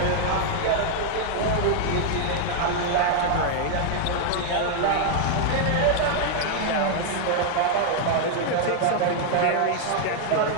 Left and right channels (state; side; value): different; both; correlation 0.00